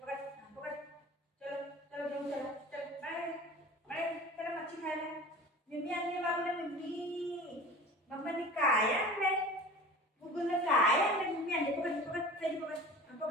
मम्मी आणली बाबूला, मम्मी मम्माने काय आणलंय? गुगलनं काय आणलंय? मम्मी आणली. पकड पकड पहिली पकड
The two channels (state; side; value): normal; both; correlation 0.39